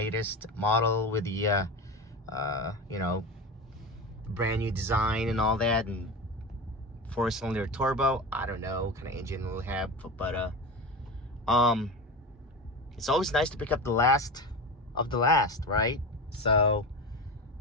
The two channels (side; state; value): both; normal; correlation 0.25